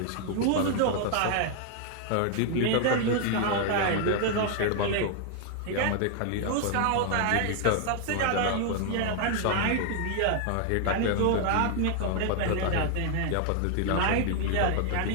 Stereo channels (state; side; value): different; both; correlation 0.00